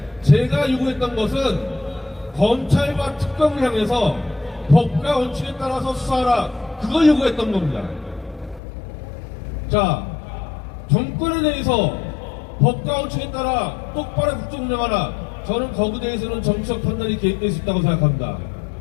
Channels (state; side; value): drops out; right; at 8.6 s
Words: 제가 요구했던 것은 검찰과 특검을 향해서 법과 원칙에 따라서 수사하라, 그걸 요구했던 겁니다. 자, 정권에 대해서 법과 원칙에 따라 똑바로 국정 운영하라, 저는 거기에 대해서는 정치적 판단이 개입될 수 있다고 생각합니다.